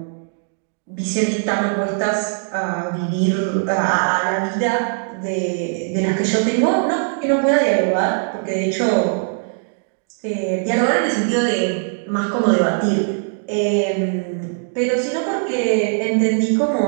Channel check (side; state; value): left; silent; digital silence